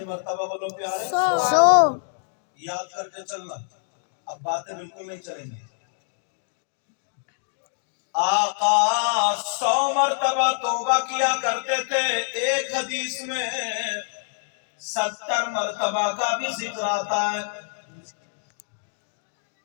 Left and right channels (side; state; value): right; silent; 61 dB below the other